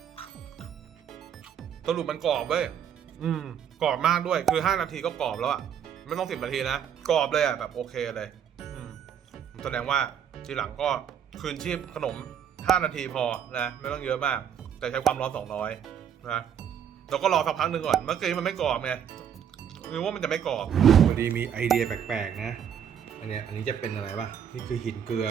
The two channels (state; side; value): quieter; left; 8.6 dB